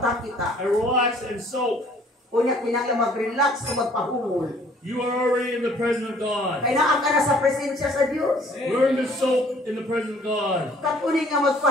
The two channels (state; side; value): normal; both; correlation 0.57